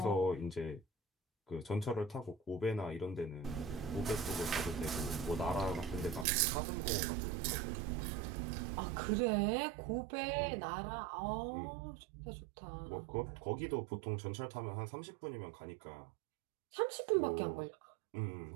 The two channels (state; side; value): drops out; left; at 6.2 s